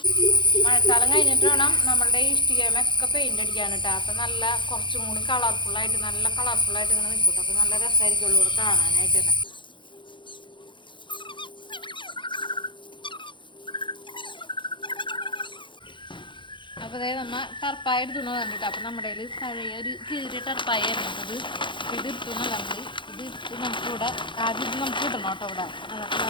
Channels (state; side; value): late; right; 0.23 ms